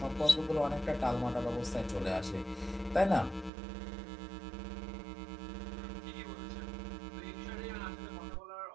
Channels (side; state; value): left; drops out; at 3.5 s